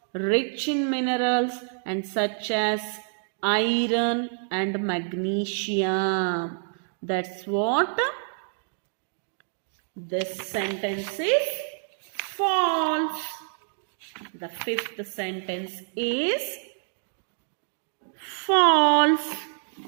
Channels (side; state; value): left; silent; digital silence